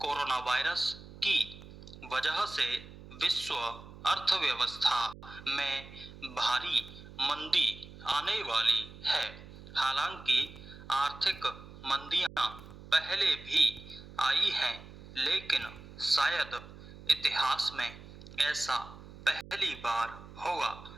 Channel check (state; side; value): noise; right; hum, 16 dB below the sound